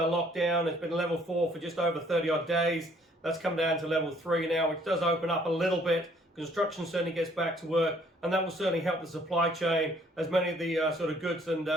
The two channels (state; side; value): normal; both; correlation 0.62